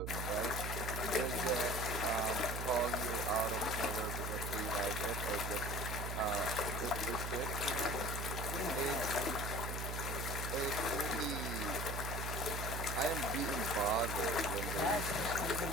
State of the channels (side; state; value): right; noise; hum, 3 dB below the sound